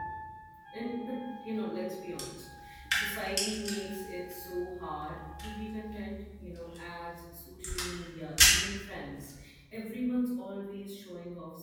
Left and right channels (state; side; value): identical; both; correlation 1.00